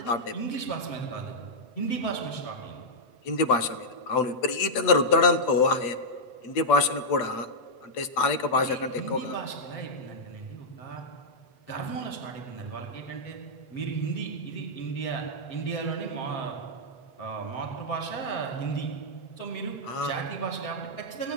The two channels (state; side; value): late; right; 7.9 ms